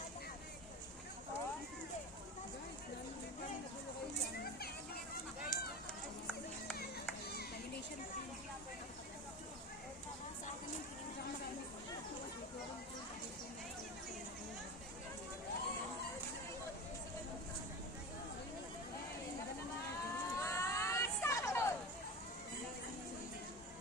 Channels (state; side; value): normal; both; correlation 0.28